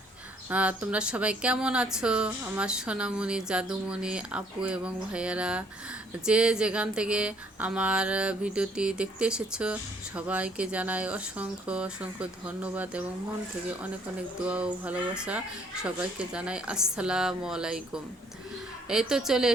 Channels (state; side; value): normal; both; correlation 0.64